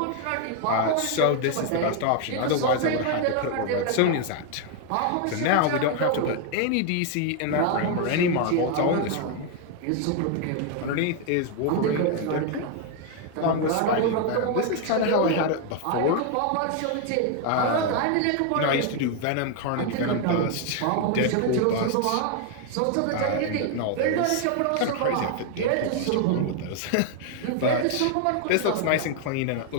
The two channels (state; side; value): different; both; correlation 0.00